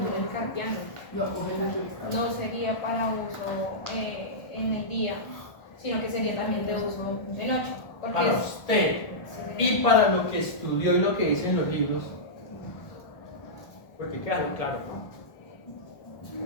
carpiano. No sería para uso en el día, sino que sería también de uso de noche. Porque Para usted y para lo que estudió y lo que dice en los libros. Porque claro, ¿no?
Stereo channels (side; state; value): right; late; 1.4 ms